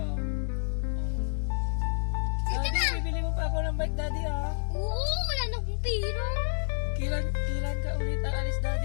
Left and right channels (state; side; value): silent; right; 58 dB below the other